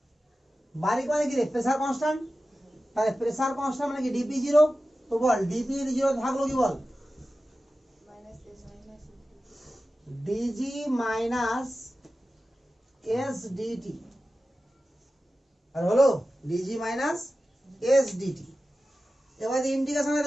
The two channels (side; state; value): both; normal; correlation 0.94